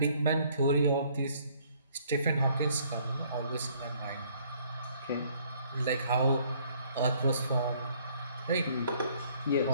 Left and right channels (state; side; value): inverted; both; correlation -0.62